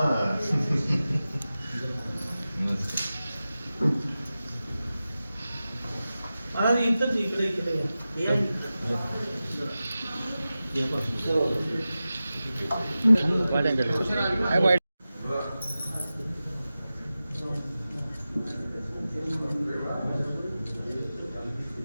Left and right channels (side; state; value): both; inverted; correlation -0.95